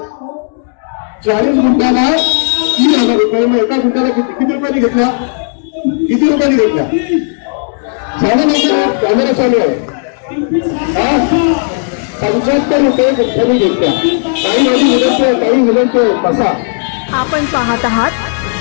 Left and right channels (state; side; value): silent; right; digital silence